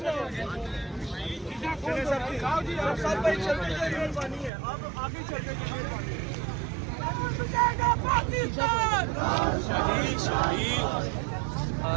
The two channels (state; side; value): drops out; left; at 4.5 s